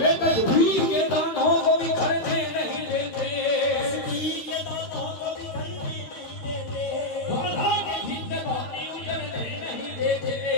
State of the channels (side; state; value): right; late; 13 ms